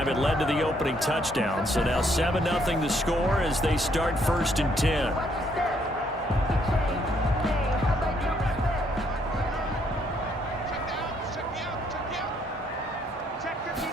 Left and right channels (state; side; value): normal; both; correlation 0.70